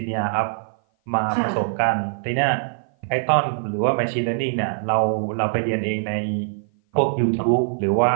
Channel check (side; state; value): left; silent; 56 dB below the other